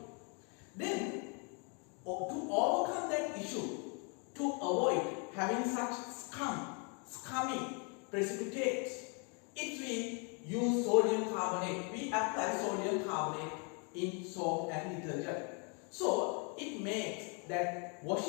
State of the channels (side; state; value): right; quieter; 36.4 dB